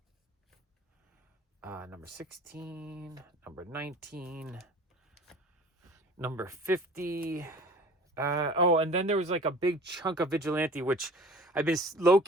Number 16. Number 19. Number 50. Oh, and then there was like a big chunk of Vigilante, which I've been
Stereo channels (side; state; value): both; normal; correlation 0.44